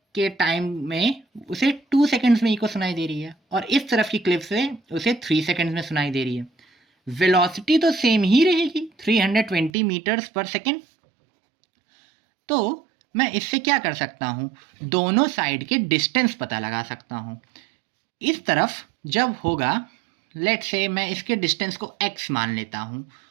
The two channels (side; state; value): left; drops out; at 9.7 s